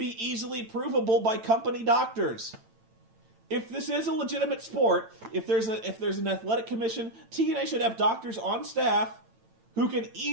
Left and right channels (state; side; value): late; left; 9.0 ms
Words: easily provable by company doctors. If this is a legitimate sport, if there's an athletic commission, TNA should have doctors on staff who can